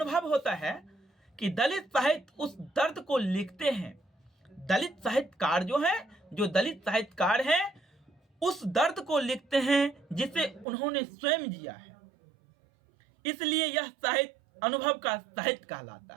होता है कि दलित साहित्य उस दर्द को लिखते हैं। दलित साहित्यकार जो दलित साहित्यकार हैं उस दर्द को लिखते हैं जिसे उन्होंने स्वयं जिया है। इसलिए यह साहित्य अनुभव का साहित्य कहलाता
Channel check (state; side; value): drops out; left; at 10.7 s